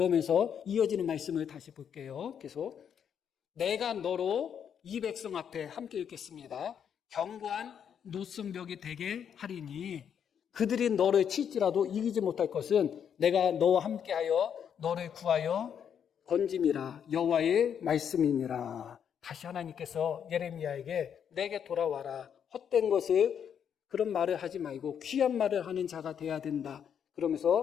이어지는 말씀을 다시 볼게요. 계속. 내가 너로 이 백성 앞에 함께 읽겠습니다. 견고한 노성벽이 되게 하리니 그들이 너를 칠지라도 이기지 못할 것은 내가 너와 함께하여 너를 구하여 건짐이라 여호와의 말씀이니라. 다시 하나님께서 예레미야에게 내게 돌아와라. 헛된 것을 그런 말을 하지 말고 귀한 말을 하는 자가 돼야 된다.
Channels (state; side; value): quieter; right; 8.2 dB